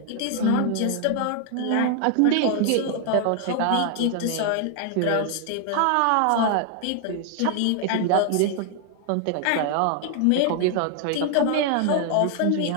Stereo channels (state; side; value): different; both; correlation 0.00